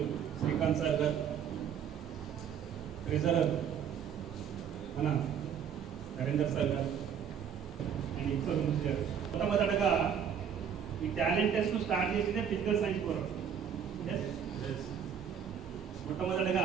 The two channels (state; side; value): quieter; left; 8.0 dB